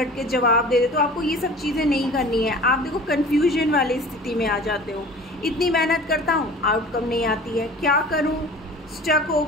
के जवाब दे देते हो। आपको ये सब चीज़ें नहीं करनी है। आप देखो कन्फ्यूजन वाली स्थिति में आ जाते हो। इतनी मेहनत करता हूँ, आउटकम नहीं आती है, क्या करूँ, स्टक हो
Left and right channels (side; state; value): both; normal; correlation 0.42